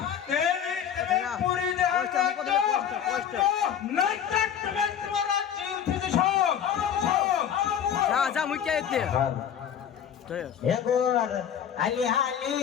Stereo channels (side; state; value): right; quieter; 8.9 dB